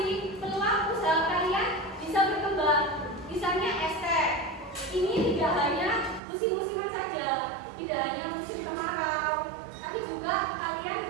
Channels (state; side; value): drops out; left; at 6.2 s